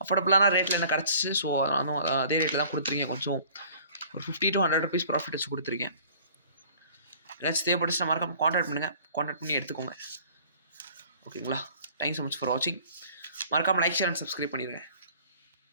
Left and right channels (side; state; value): both; inverted; correlation -0.51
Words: அஃபோர்டபுளான ரேட்டில் என்ன கிடச்சிச்சு, ஸோ நானும் அதே ரேட்டில் தான் கொடுத்துருக்கேன். கொஞ்சம் ஒரு 50 to 100 rupees ப்ராஃபிட் வச்சு கொடுத்துருக்கேன். ஏதாச்சும் தேவைப்பட்டுச்சுன்னா மறக்காம கான்டாக்ட் பண்ணுங்கள், கான்டாக்ட் பண்ணி எடுத்துக்கோங்க, ஓகேங்களா. தேங்க்ஸ் ஸோ மச் ஃபார் வாட்சிங். மறக்காமல் லைக், ஷேர் அண்ட் சப்ஸ்கிரைப் பண்ணிடுங்க.